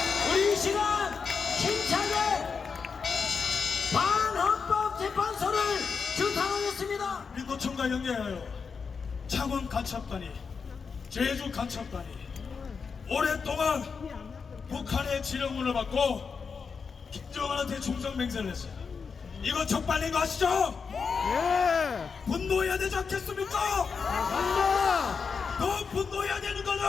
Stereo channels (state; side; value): quieter; right; 5.5 dB